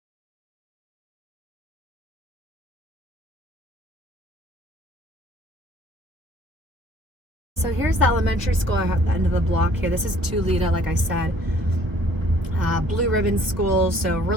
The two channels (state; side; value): late; left; 1.3 ms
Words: So here's the elementary school at the end of the block here. This is Tulita, like I said. Blue ribbon school, so